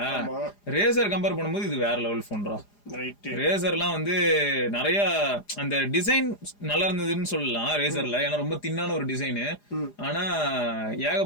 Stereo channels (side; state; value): right; late; 4.9 ms